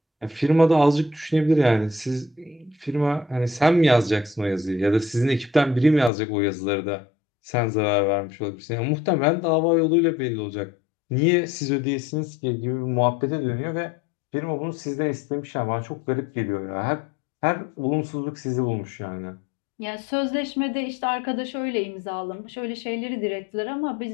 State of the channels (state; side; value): drops out; right; at 6.1 s